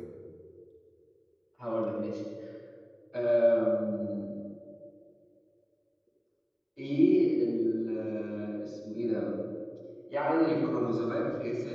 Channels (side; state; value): both; identical; correlation 1.00